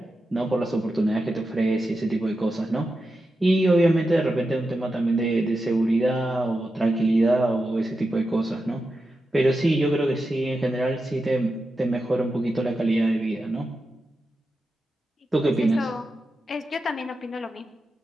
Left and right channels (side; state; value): both; normal; correlation 0.90